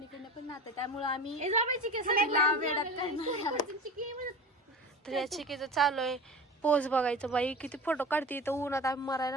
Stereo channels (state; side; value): normal; both; correlation 0.33